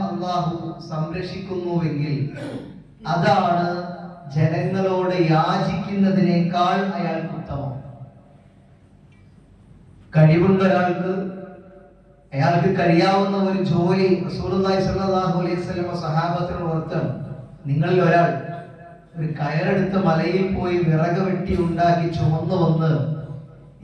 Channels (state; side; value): identical; both; correlation 1.00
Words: അല്ലാഹു സംരക്ഷിക്കുന്നുവെങ്കിൽ അതാണ് ജനങ്ങളോട് യാചിക്കുന്നതിനേക്കാൾ അയാൾക്ക് ഉത്തമം. കഴിവുണ്ട് ഒരാൾക്ക്, അയാൾക്ക് കഴിയാവുന്ന ഒരു ജോലി റസൂലുള്ളാഹി സ്വല്ലല്ലാഹു അലൈഹി വസല്ലം സഹാബത്തിനോട് ഓർത്താണ്, നിങ്ങളിൽ ഒരാൾ ഒരു കയറെടുത്ത് മലയിൽ പോയി വിറക് വെട്ടി ഉണ്ടാക്കി ചുമന്നു വന്ന്